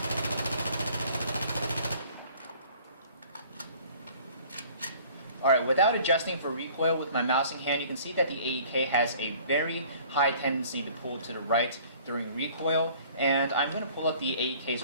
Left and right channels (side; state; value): both; inverted; correlation -0.52